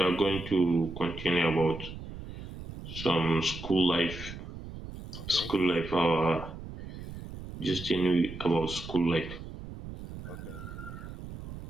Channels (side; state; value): right; noise; rumble, 11 dB below the sound